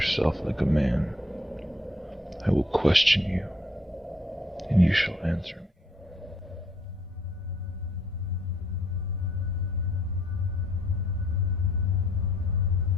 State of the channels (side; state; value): both; normal; correlation 0.66